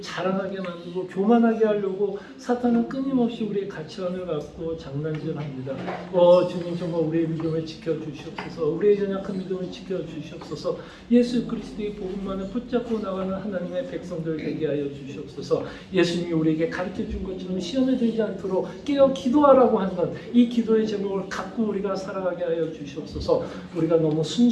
만들고 교만하게 하려고 사탄은 끊임없이 우리의 가치관을 갖고 장난질합니다. 주님, 정말 우리의 믿음을 지켜주시옵소서. 우리의 연약한 믿음을 지켜주시옵소서. 예수 그리스도의 복음만을 붙잡고 나가는 하나님의 백성들 되게 하여 주시옵소서. 예수님이 우리에게 가르쳐준 것처럼 시험에 들지 않도록 깨어 기도하라고 하는 이 기도의 제목을 갖고 우리가 살아가게 하여 주시옵소서. 우리가 너무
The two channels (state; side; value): identical; both; correlation 1.00